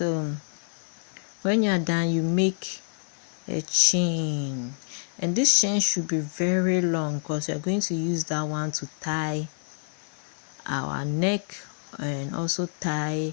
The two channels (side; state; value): right; silent; 60 dB below the other